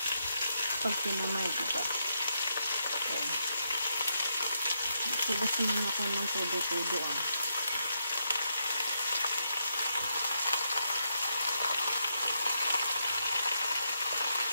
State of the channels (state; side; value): inverted; both; correlation -0.80